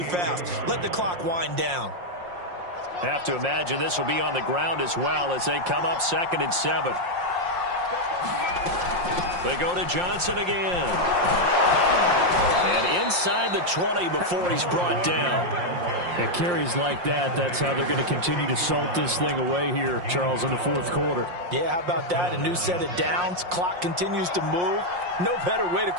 fast. Let the clock wind down. Have to imagine this will be on the ground as well as they come up 2nd and 7. They go to Johnson again. And inside the 20 before he's brought down. At carries like that, that's how they're going to continue to salt this thing away here, Charles, in the fourth quarter. Yeah, how about that? A new set of downs. Clock continues to move. No better way to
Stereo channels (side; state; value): left; late; 5.6 ms